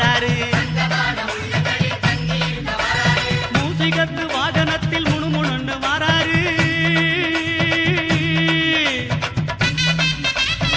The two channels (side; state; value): both; identical; correlation 1.00